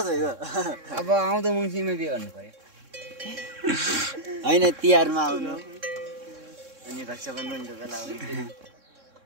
अब आउँदो मङ्सिरमा बिहे गर्नु पर्यो होइन तिहारमा आउनु अनि रक्षाबन्धनको बेला आउनु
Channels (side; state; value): left; late; 3.6 ms